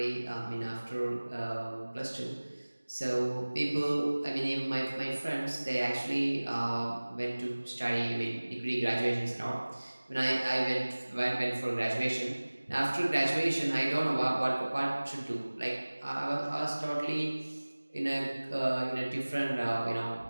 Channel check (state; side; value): inverted; both; correlation -1.00